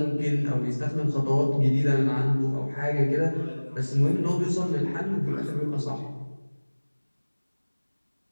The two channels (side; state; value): both; inverted; correlation -1.00